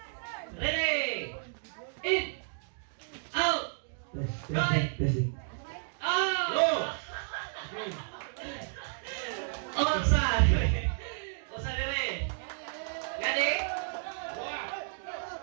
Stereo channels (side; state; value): left; silent; digital silence